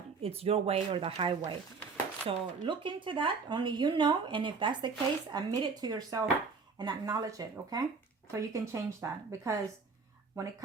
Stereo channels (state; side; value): quieter; left; 4.8 dB